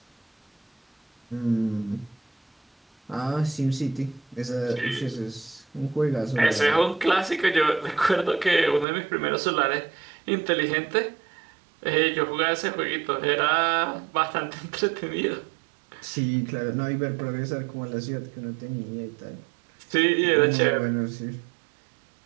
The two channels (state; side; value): drops out; left; at 8.8 s